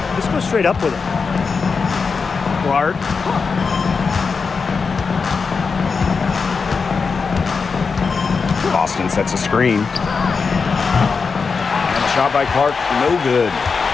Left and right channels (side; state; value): right; quieter; 5.1 dB